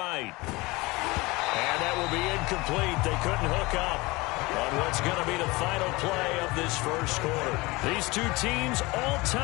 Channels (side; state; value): right; quieter; 22.9 dB